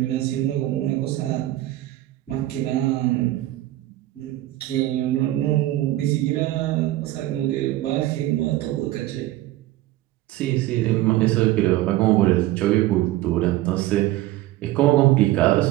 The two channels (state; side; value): quieter; left; 15.9 dB